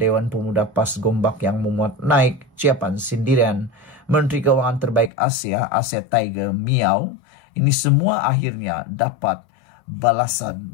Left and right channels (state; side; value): drops out; right; at 5.1 s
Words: Pemuda PAS Gombak yang memuat naik ciapan sindiran Menteri Keuangan terbaik Asia Tiger, miau. Ini semua akhirnya dapat balasan